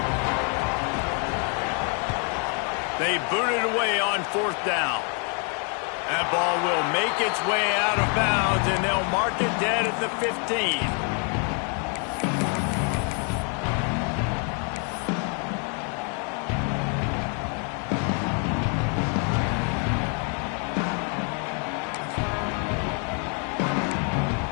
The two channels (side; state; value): right; quieter; 39.7 dB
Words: They boot it away on 4th down. That ball will make its way out of bounds, and they'll mark it dead at the 15.